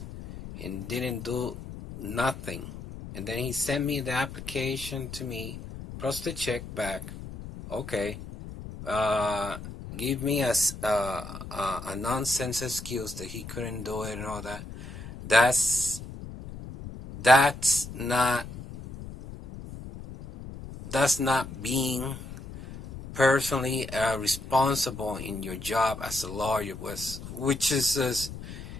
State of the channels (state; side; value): noise; left; rumble, 12 dB below the sound